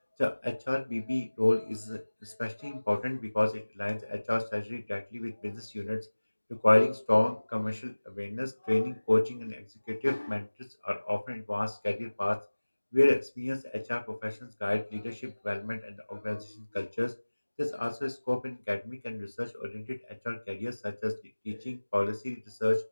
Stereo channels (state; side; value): inverted; both; correlation -1.00